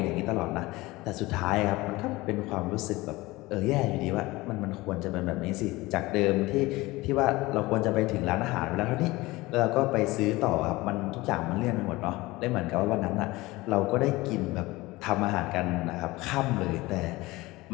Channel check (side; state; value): right; quieter; 20.5 dB